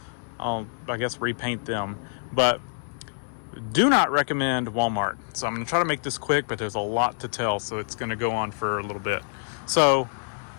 I guess repaint them. But do not recommend Walmart. So I'm going to try to make this quick, but there's a lot to tell, so it's going to go on for a little bit. So,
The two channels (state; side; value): silent; right; 59 dB below the other